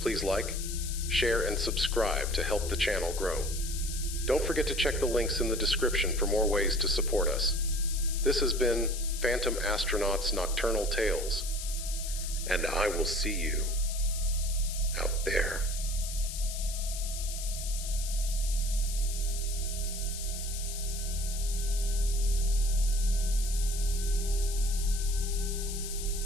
like, share, and subscribe to help the channel grow. Don't forget to check the links in the description for more ways to support us. This has been Phantom Astronaut's Nocturnal Tales, and I will see you out there.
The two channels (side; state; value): left; noise; hiss, 8 dB below the sound